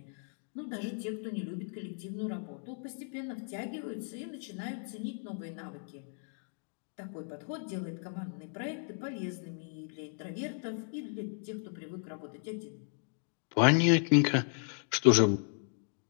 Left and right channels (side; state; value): right; silent; 54 dB below the other